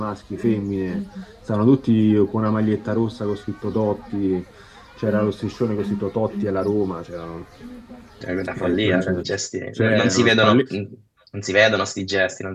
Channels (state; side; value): identical; both; correlation 1.00